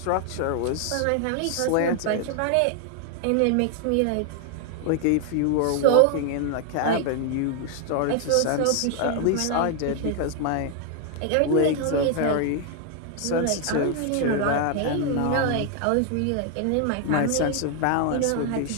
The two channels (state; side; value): different; both; correlation 0.00